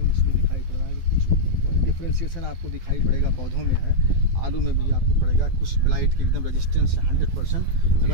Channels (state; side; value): late; left; 12 ms